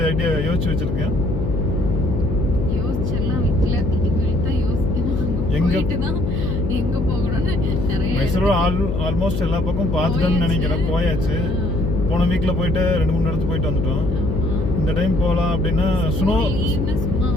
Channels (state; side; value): noise; left; hum, 1 dB below the sound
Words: ஐடியா யோசிச்சு வச்சுருக்கேன்? மைசூர் ஆல்மோஸ்ட் எல்லா பக்கம் பார்த்துட்டோன்னு நினைக்கிறேன். போயாச்சு. போன வீக்கில் போயிட்டு 2-3 இடத்துக்கு போயிட்டு வந்துட்டோம். இந்த டைம் போகலாம் அப்படின்னா ஸ்னோ